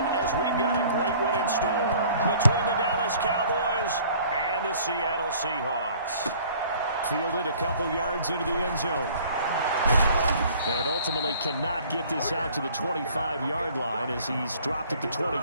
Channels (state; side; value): inverted; both; correlation -0.53